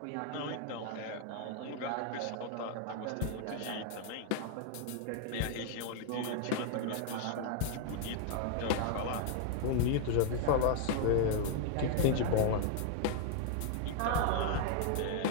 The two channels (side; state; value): both; different; correlation 0.00